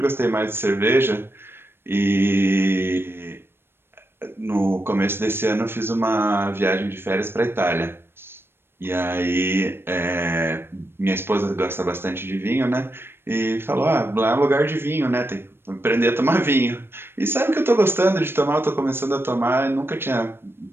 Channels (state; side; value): late; left; 0.11 ms